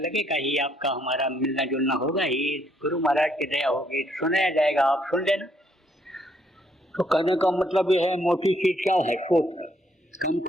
ही, आपका हमारा मिलना जुलना होगा ही, गुरु महाराज की दया होगी, सुनाया जाएगा, आप सुन लेना। तो कहने का मतलब ये है, मोटी चीज क्या है? सोच, कम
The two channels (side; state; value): both; normal; correlation 0.70